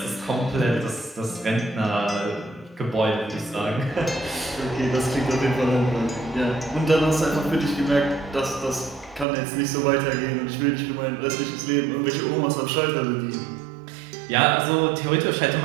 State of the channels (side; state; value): left; drops out; at 9.2 s